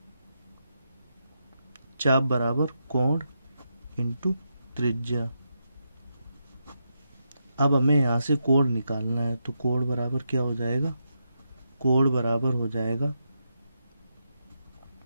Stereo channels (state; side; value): inverted; both; correlation -0.84